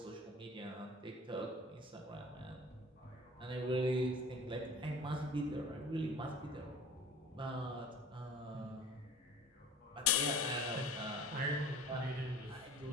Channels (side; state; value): both; normal; correlation 0.43